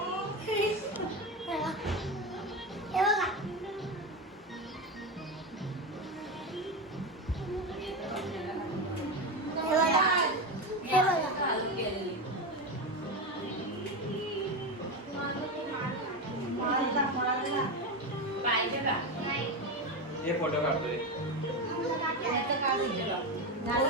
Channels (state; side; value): normal; both; correlation 0.17